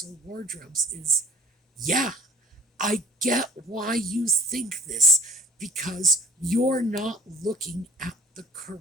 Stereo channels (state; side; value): normal; both; correlation 0.46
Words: wardrobes is, yeah, I get why you think this, because you're not looking at the